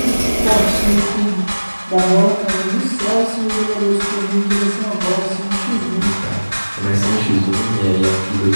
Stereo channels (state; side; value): inverted; both; correlation -1.00